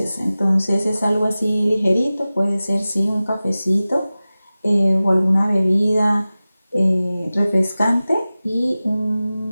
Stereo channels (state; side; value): inverted; both; correlation -0.97